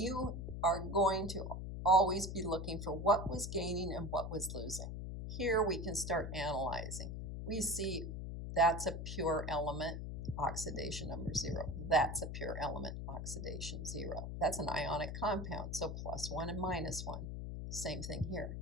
are going to always be looking for what was gaining and what was losing. Here we can start analyzing. We see that's a pure element, oxidation number 0. That's a pure element, oxidation 0. That's an ionic compound, so +1 and -1. Same thing here,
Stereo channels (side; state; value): left; noise; hum, 5 dB below the sound